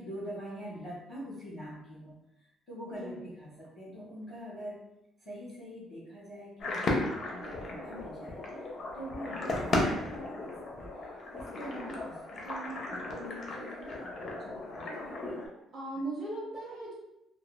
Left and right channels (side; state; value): both; normal; correlation 0.68